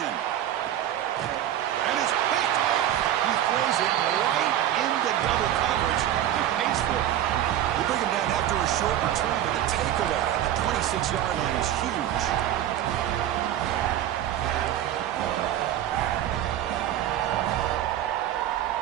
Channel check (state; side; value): quieter; left; 11.9 dB